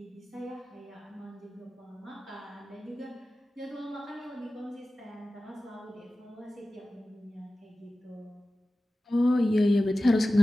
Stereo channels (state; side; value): normal; both; correlation 0.95